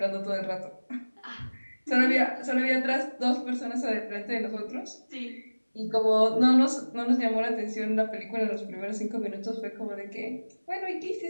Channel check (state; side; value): inverted; both; correlation -1.00